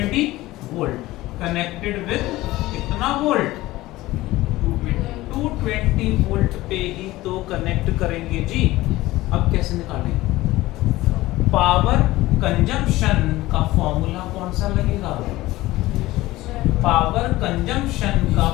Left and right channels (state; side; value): quieter; right; 17.8 dB